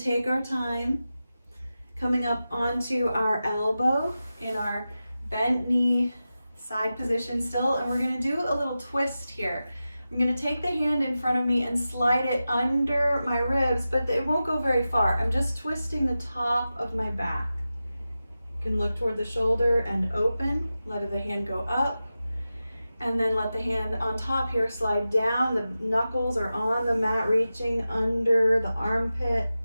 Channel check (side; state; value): both; inverted; correlation -0.93